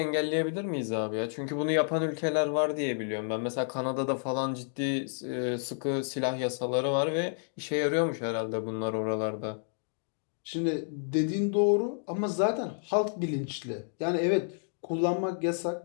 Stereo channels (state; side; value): silent; right; digital silence